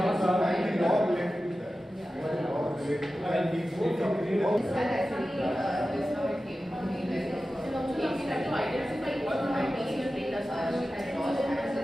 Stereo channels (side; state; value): both; normal; correlation 0.94